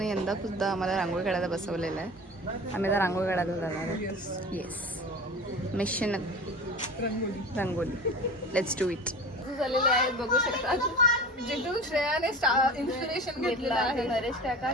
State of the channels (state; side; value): normal; both; correlation 0.35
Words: यंदा सुद्धा आम्हाला रांगोळी काढायला बसवलेलं आहे. आम्ही आता रांगोळी काढायला जाणार आहोत. Yes mission rangoli let's do it झालेले आहेत बघू शकतात. जिथून श्रेयाने इन्स्पिरेशन घेतलं आहे. नरेश काका